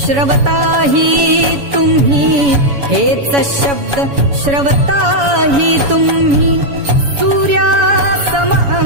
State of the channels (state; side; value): late; left; 7.1 ms